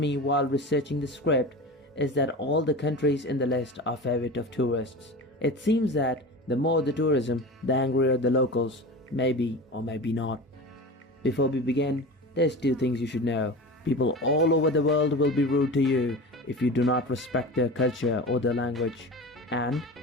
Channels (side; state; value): both; normal; correlation 0.32